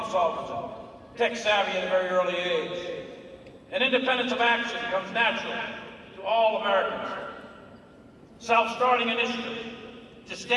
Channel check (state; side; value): identical; both; correlation 1.00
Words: solvers, and tech savvy at a very early age. And independence of action comes natural to all Americans. Self-starting initiative,